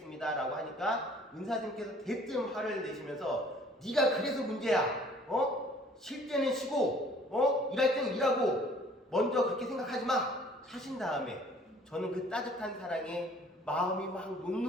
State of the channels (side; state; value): both; normal; correlation 0.55